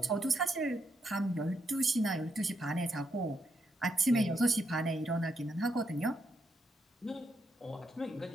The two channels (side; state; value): both; normal; correlation 0.79